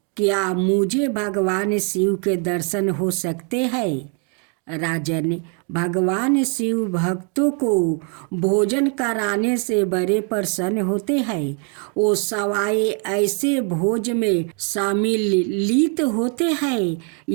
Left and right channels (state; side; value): quieter; left; 39.0 dB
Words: क्या मुझे भगवान शिव के दर्शन हो सकते हैं? राजन, भगवान शिव भक्तों को भोजन कराने से बड़े प्रसन्न होते हैं। वो सवाए ऐसे भोज में सम्मिलित होते हैं।